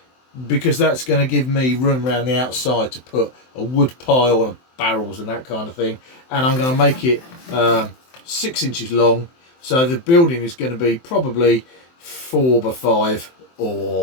because that's going to give me room around the outside to put a wood pile and barrels and that kind of thing. And I'm going to make it 6 inches long, so the building is going to be probably 4 by 5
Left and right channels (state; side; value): late; right; 23 ms